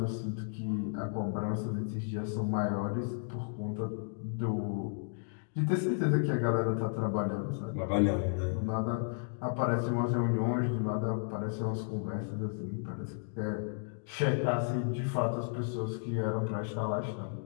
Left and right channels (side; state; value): right; silent; digital silence